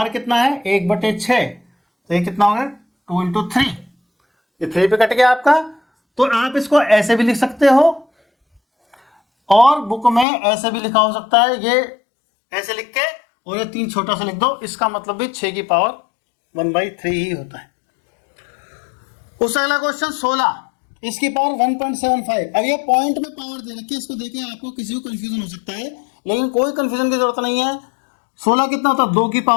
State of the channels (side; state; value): right; drops out; at 10.2 s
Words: कितना है 1/6, तो ये कितना हो गया 2 इंटू 3, ये 3 पे कट गया आपका। तो आप इसको ऐसे भी लिख सकते हो और बुक में ऐसे भी लिखा हो सकता है, ये ऐसे लिख के और ये 3 छोटा सा लिख दो, इसका मतलब भी 6 की पावर 1/3 ही होता है। उससे अगला क्वेश्चन 16, इसकी पावर 1.75। अब ये पॉइंट में पावर दे रखी है, इसको देखें आपको किसी को कंफ्यूजन हो सकता है, लेकिन कोई कंफ्यूजन की जरूरत नहीं है। 16 कितना होता है 2 की